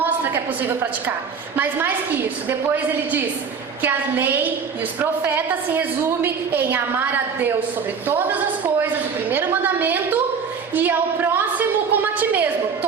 que é possível praticar. Mas mais que isso, depois ele diz que a lei e os profetas se resume em amar a Deus sobre todas as coisas, o primeiro mandamento, e ao próximo como a ti mesmo,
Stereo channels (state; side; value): quieter; left; 6.0 dB